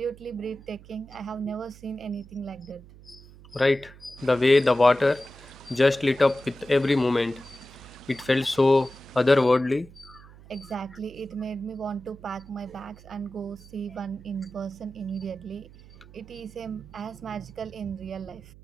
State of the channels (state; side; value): noise; right; hum, 20 dB below the sound